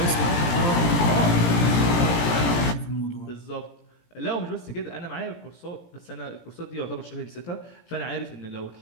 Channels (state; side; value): late; right; 17 ms